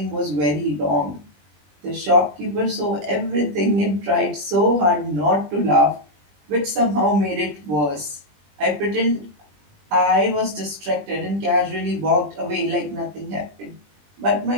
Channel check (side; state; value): left; late; 20 ms